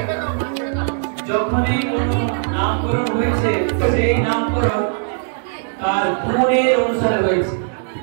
যখনই কোনো নামকরণ হয়েছে সেই নামকরণ তার গুণের অনুসারে হয়েছে।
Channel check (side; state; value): left; silent; digital silence